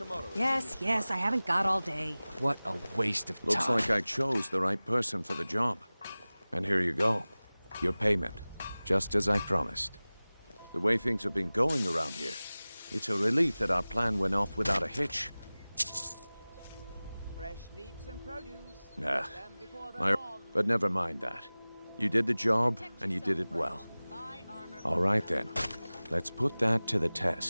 Yes, I haven't got all day. What a waste of time. Looks like I chose the right person for the job. And here you go. Your payment. Just as I promised. The way things have been going around here, it's a relief that our plan went off without a hitch. Fresh meats and produce. Nah. But never mind that. You did the job, and you did it well. All right then. Let's put that to the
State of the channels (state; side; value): inverted; both; correlation -0.99